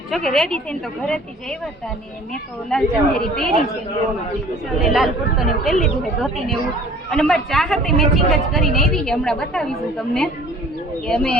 જો કે રેડી થઈને તો ઘરેથી જ આવ્યા હતા ને મેં તો લાલ ચંદેરી પહેરી છે ને લાલ કુર્તો ને એવું પહેરી લીધું છે, ધોતી ને એવું। અને મારી ચાહતે મેચિંગ જ કરીને આવી છે, હમણાં બતાવીશું તમને કે અમે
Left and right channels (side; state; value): both; normal; correlation 0.49